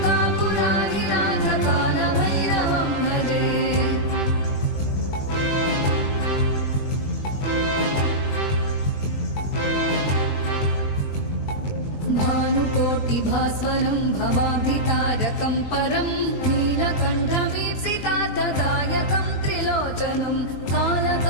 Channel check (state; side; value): late; right; 20 ms